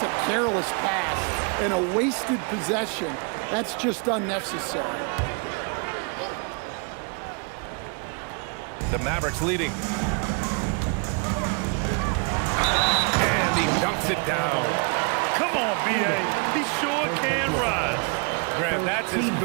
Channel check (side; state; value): left; quieter; 35.6 dB